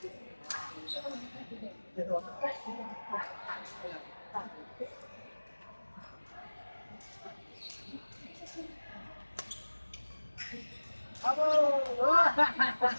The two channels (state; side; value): inverted; both; correlation -1.00